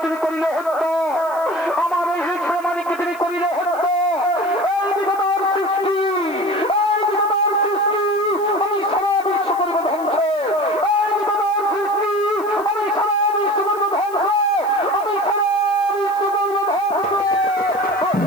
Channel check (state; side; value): noise; left; hiss, 23 dB below the sound